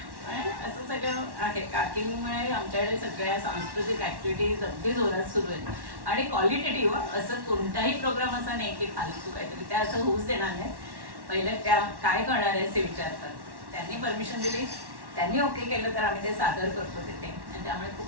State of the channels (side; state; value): left; late; 1.1 ms